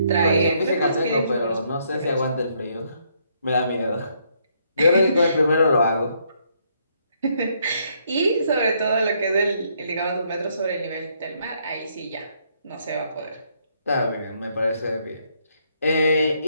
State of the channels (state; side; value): inverted; both; correlation -0.71